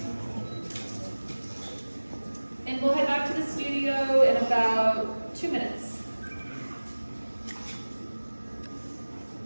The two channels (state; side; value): inverted; both; correlation -1.00